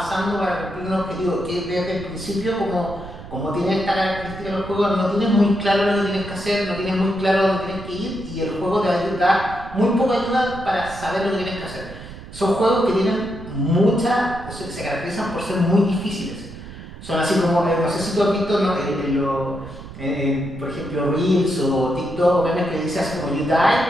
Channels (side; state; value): right; noise; rumble, 14 dB below the sound